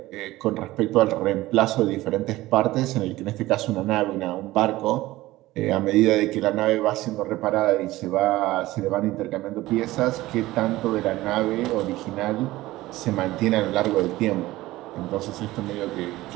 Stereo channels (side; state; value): left; quieter; 17.6 dB